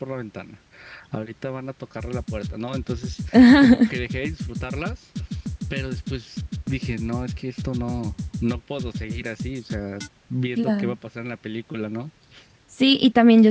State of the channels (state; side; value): identical; both; correlation 1.00